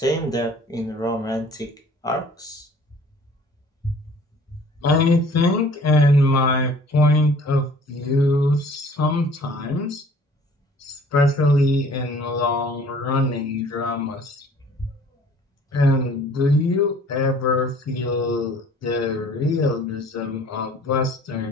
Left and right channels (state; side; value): normal; both; correlation 0.52